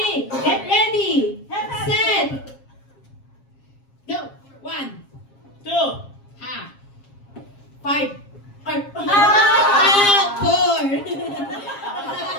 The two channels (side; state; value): right; late; 7.4 ms